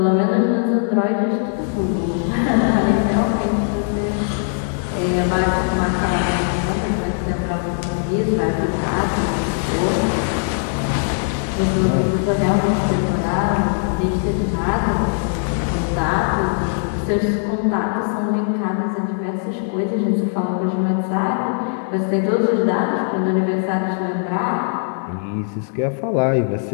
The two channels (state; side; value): silent; right; digital silence